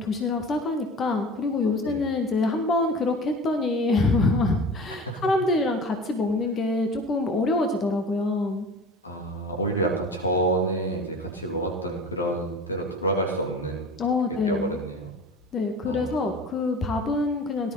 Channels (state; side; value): normal; both; correlation 0.38